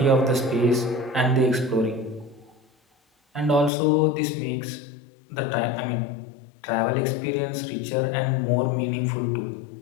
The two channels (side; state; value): right; drops out; at 3.7 s